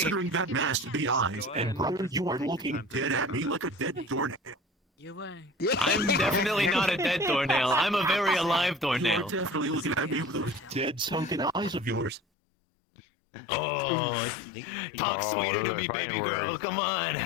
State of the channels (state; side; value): drops out; right; at 12.2 s